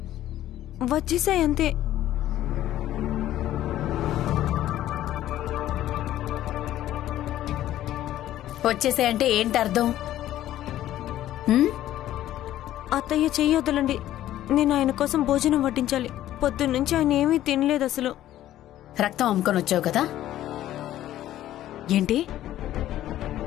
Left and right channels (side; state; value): right; quieter; 13.2 dB